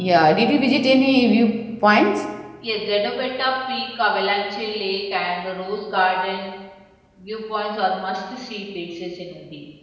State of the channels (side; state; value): both; identical; correlation 1.00